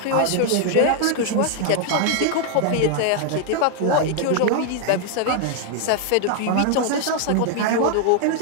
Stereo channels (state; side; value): different; both; correlation 0.00